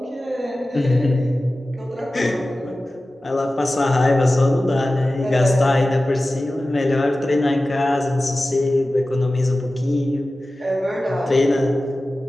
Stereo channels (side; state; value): both; normal; correlation 0.96